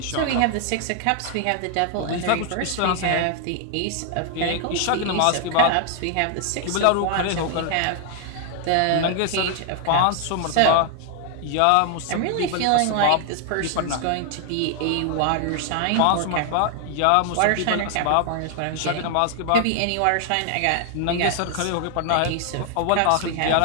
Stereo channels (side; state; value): both; different; correlation 0.00